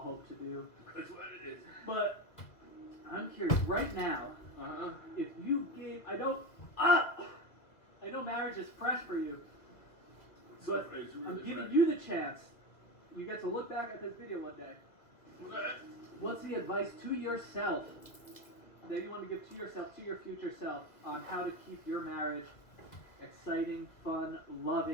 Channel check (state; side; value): late; right; 2.1 ms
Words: hope to do. That's what it is. But I'm curious, right now, if you gave, I know marriage is fresh for you, but It's really I'm giving fresh. you the chance. You get to look back at this video one day. Okay. What's the advice to yourself that you want to give to yourself, to your future self, on how to keep your marriage exciting, fun,